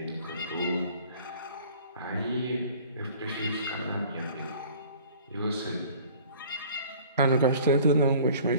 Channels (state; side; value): inverted; both; correlation -0.48